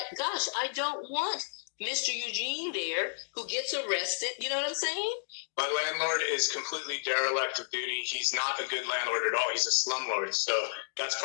gosh, I don't want Mr. Eugene there who gets arrested. You know what I'm saying? My landlord is completely derelict of duty. He's not a good landlord at all. He's a slumlord. So that's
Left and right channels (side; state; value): right; silent; digital silence